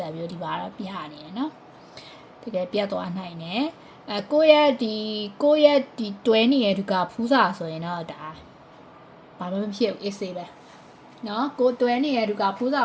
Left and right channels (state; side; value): identical; both; correlation 1.00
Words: ံမျိုးဒီပါတော့ပြနေတယ်နော်တကယ်ပြက်သွားနိုင်တယ်ကိုယ့်ရဲ့ဒီတွဲနေတဲ့သူကဖူးစာဆိုရင်တော့ဒါဘာမှမဖြစ်ဘူးအေးဆေးပဲနော်ကိုတွဲနေတဲ့သူကဖူးစာ